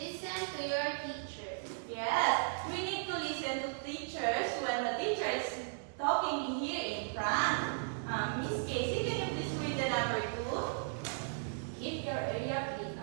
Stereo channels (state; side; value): silent; left; digital silence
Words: to your teacher. Yes, we need to listen to teachers when the teacher is talking here in front. Miss Casey, can you please read the number 2? Keep your area clean